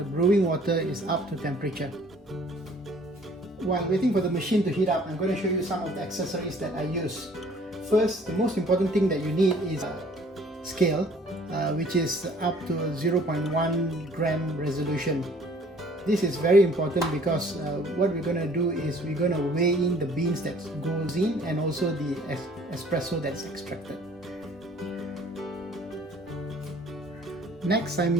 brewing water is up to temperature. While waiting for the machine to heat up, I'm going to show you some of the accessories that I use. First, the most important thing that you need is a scale, which is up to 0.1 gram resolution. This is very important because what we're going to do is we're going to weigh in the beans that goes in and also the espresso that's extracted. Next,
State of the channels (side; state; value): both; normal; correlation 0.55